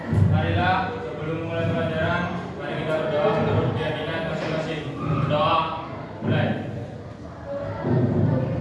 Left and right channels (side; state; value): both; identical; correlation 1.00